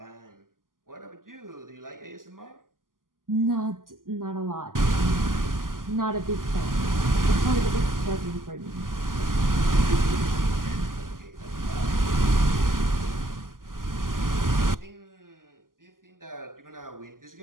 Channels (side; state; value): left; late; 0.91 ms